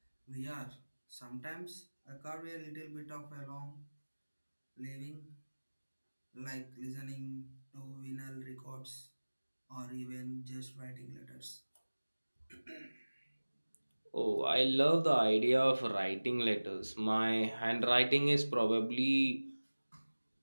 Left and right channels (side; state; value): both; inverted; correlation -1.00